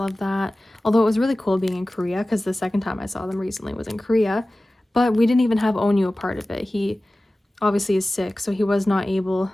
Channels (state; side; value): normal; both; correlation 0.97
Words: that. Although it was really cool being in Korea because the second time I saw them recently was in Korea, but we didn't even have Onyu a part of it. He obviously is sick, so he was not able